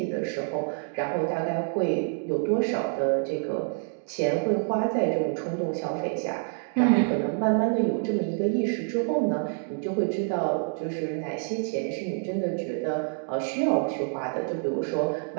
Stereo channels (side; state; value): left; silent; 58 dB below the other